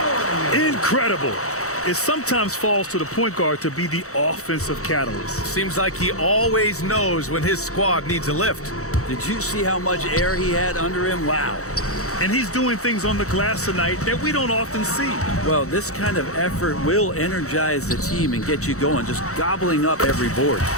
Incredible. It sometimes falls to the point guard to be the offensive catalyst. Seems like he always knows when his squad needs a lift. Did you see how much air he had under him? Wow. And he's doing things on the glass tonight that we don't often see. Well, this kind of effort will energize the team and get you going, just gobbling up every board.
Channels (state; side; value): late; right; 0.65 ms